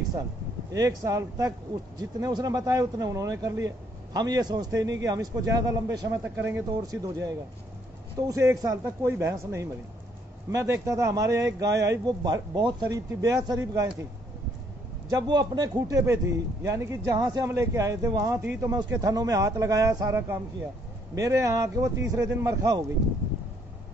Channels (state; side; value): normal; both; correlation 0.68